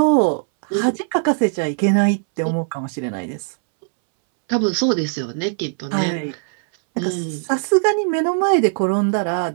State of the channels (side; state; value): left; silent; 64 dB below the other